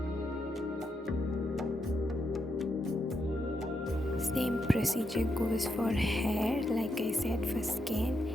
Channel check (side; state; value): both; normal; correlation 0.82